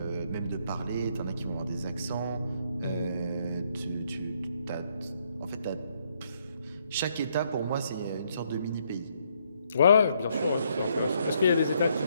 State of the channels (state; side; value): inverted; both; correlation -0.72